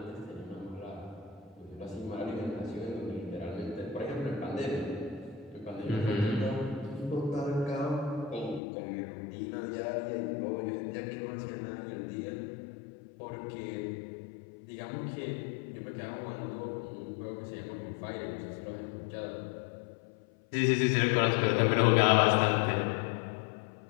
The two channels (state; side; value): drops out; right; at 8.6 s